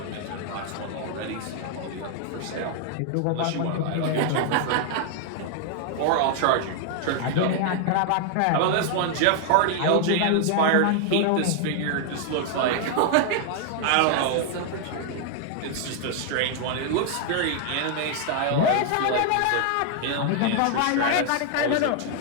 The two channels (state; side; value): different; both; correlation 0.00